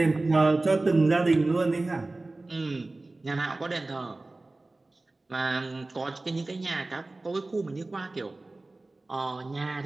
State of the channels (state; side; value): quieter; left; 3.0 dB